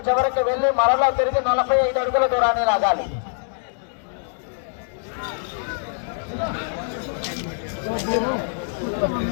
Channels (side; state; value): right; silent; digital silence